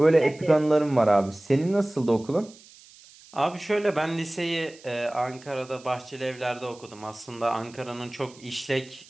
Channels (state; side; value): noise; right; hiss, 23 dB below the sound